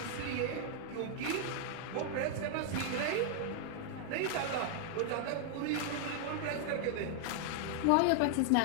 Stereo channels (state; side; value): different; both; correlation 0.00